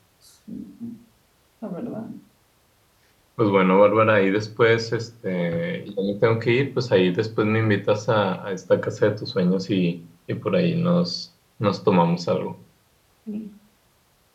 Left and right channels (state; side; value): identical; both; correlation 1.00